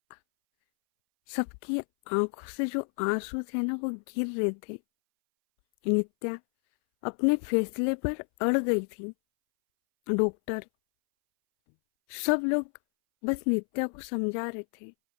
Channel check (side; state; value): right; silent; 58 dB below the other